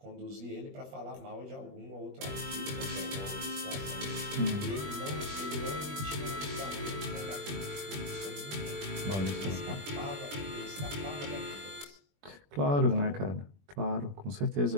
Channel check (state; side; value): late; left; 21 ms